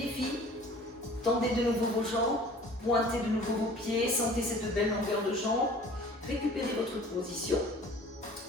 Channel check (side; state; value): both; normal; correlation 0.48